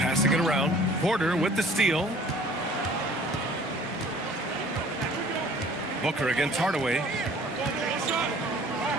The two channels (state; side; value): normal; both; correlation 0.52